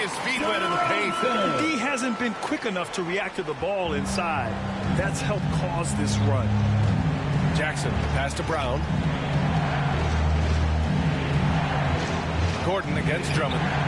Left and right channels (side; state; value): both; identical; correlation 1.00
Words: feet wet in the paint. D hasn't been quick enough to react to the ball inside. That's helped cause this run. Jackson, pass to Brown. Gordon against Drummond.